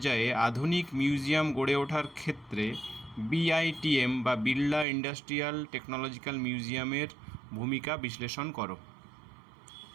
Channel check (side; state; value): left; drops out; at 4.9 s